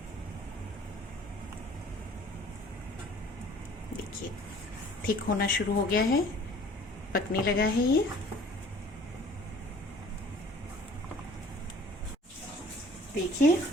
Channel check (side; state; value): both; normal; correlation 0.52